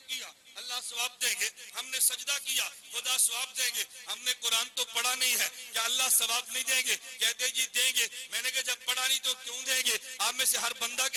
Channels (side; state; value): both; identical; correlation 1.00